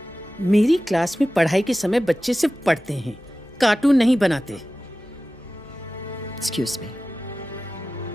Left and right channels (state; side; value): normal; both; correlation 0.95